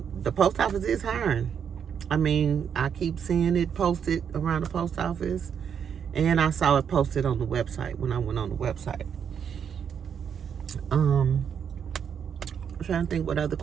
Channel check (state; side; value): quieter; left; 7.7 dB